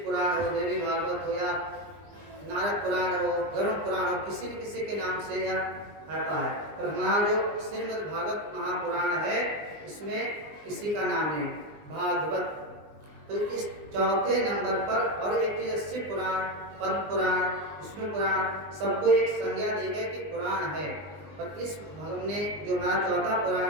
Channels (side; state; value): left; late; 20 ms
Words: पुराण हो, देवी भागवत हो, या नारद पुराण हो, गरुड़ पुराण हो, किसी न किसी के नाम से यह आता है। पर हमारा जो श्रीमद् भागवत महापुराण है, इसमें किसी का नाम नहीं, भागवत। तो इस चौथे नंबर पर, और एक चीज शिव पुराण, पद्म पुराण, विष्णु पुराण, सबको एक संज्ञा दी गई कि पुराण है। पर इस हमने जो हमारा चौथा